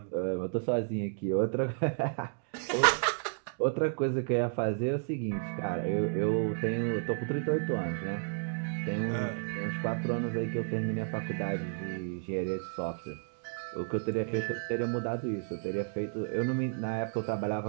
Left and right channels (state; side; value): silent; left; digital silence